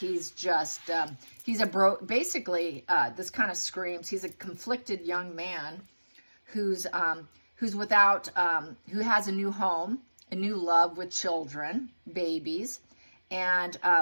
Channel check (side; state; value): both; inverted; correlation -1.00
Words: just basically this kind of screams he's a conflicted young man who's without who has a new home, a new love with children, babies, and